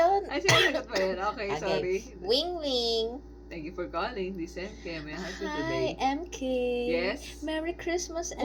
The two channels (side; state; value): both; identical; correlation 1.00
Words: Ay, sinasagot pa yun. Okay, sorry. Wing. Thank you for calling. This is MK. May I help you Hi, today? MK. Yes? Merry Christmas,